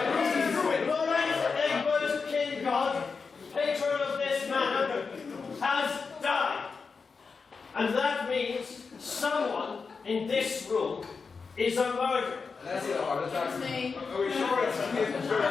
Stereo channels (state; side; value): quieter; right; 5.0 dB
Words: Lawrence Egbert Kingod, patron of this manor, has died. And that means someone in this room is a murderer. That's it, heart attack. Are we sure it's